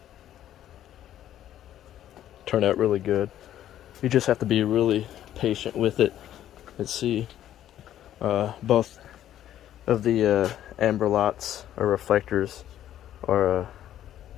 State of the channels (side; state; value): right; quieter; 11.7 dB